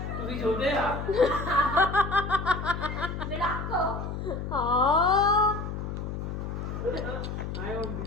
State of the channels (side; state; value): left; noise; hum, 5 dB below the sound